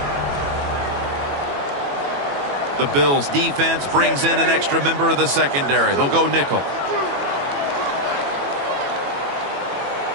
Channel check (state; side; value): late; left; 21 ms